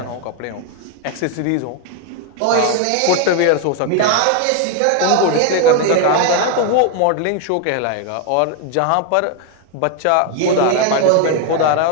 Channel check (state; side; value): different; both; correlation 0.01